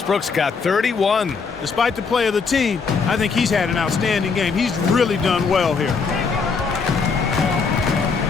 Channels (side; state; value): right; quieter; 5.2 dB